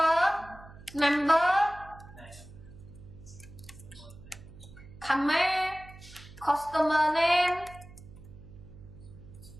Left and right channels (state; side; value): noise; right; hum, 19 dB below the sound